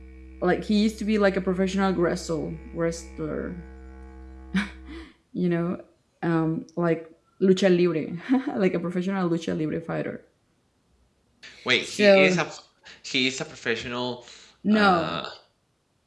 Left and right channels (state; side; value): identical; both; correlation 1.00